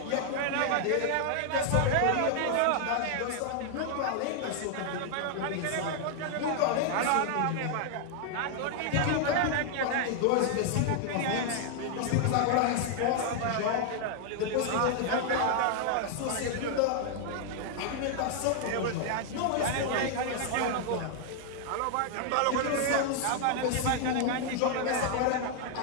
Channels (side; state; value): both; different; correlation 0.00